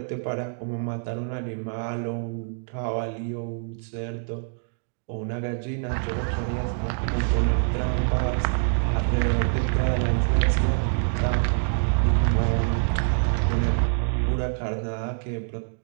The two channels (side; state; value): left; silent; digital silence